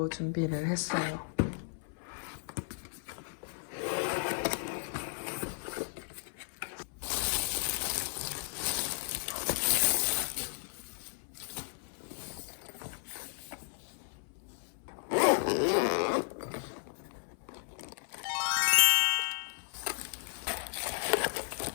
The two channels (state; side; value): silent; right; 55 dB below the other